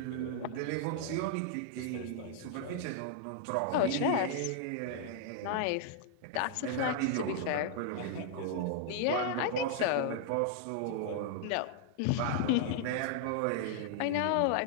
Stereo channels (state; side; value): different; both; correlation -0.01